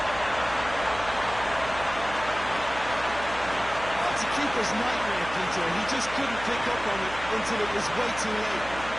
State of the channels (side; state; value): right; noise; hum, 14 dB below the sound